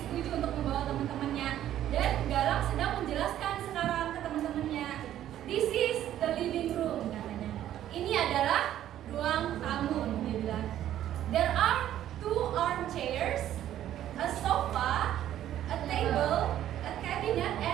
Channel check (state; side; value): quieter; left; 11.9 dB